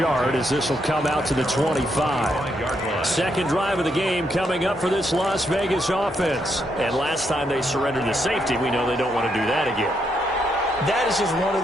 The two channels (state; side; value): normal; both; correlation 0.78